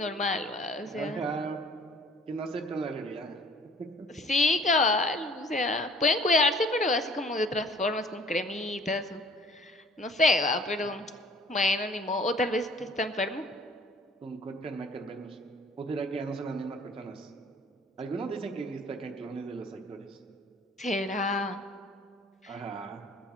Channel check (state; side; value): normal; both; correlation 0.53